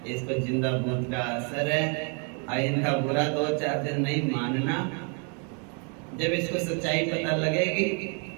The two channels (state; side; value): quieter; left; 38.1 dB